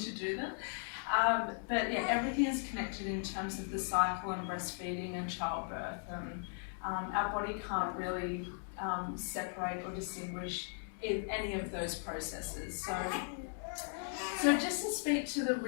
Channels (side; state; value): right; silent; 53 dB below the other